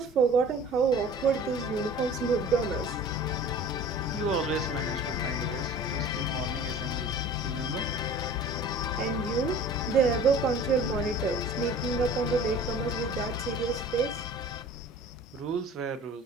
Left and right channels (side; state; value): both; normal; correlation 0.44